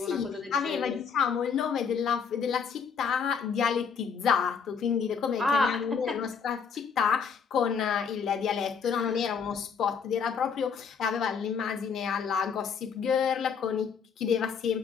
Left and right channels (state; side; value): quieter; right; 6.4 dB